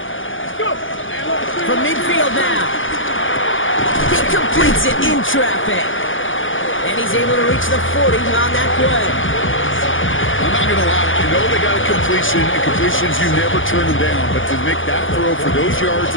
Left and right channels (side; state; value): right; late; 0.57 ms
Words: Let's go. From midfield now. He completes it in traffic. And he's able to reach the 40 on that play. I'm not going to lie. You know they got a completion, and completions, you never turn them down. But to make that throw for those yards